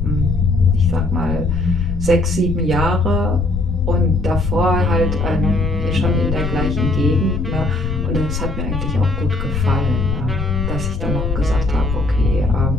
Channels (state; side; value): noise; left; rumble, 4 dB below the sound